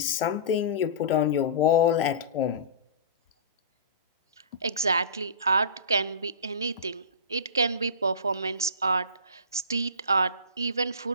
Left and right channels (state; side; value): inverted; both; correlation -0.32